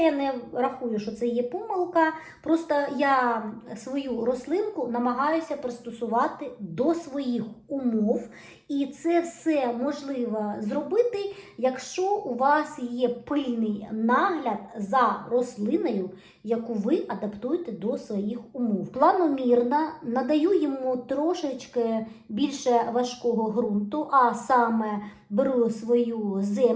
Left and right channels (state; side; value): identical; both; correlation 1.00